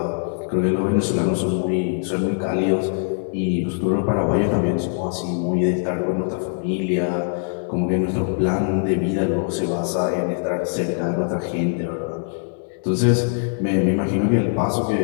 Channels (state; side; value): silent; right; digital silence